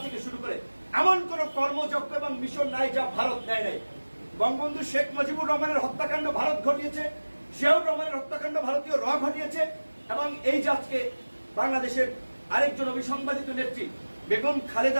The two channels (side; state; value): both; inverted; correlation -1.00